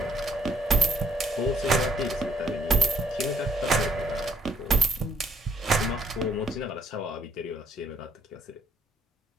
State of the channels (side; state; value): both; normal; correlation 0.68